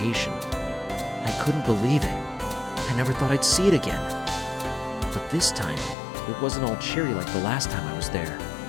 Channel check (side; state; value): right; drops out; at 6.0 s